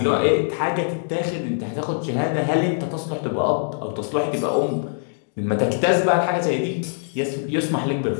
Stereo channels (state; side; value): silent; right; digital silence